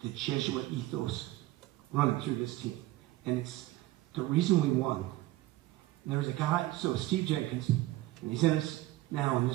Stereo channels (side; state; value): left; quieter; 17.2 dB